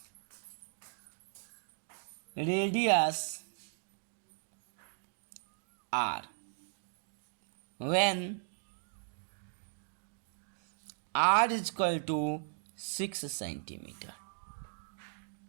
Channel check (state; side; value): silent; left; digital silence